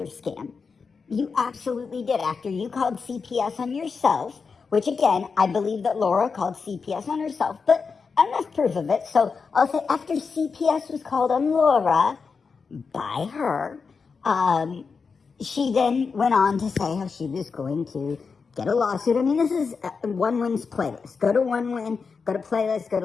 scam. You absolutely did. After you called CPS on yourself, which again, I believe that Laura called CPS on herself, but enough proof of it. So I'll say after CPS was called on Laura by her, she then went on to say how she was going to get a lawsuit. I mean, this is One Win's playlist. Go to One Win, go to playlist, go to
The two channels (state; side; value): quieter; right; 5.2 dB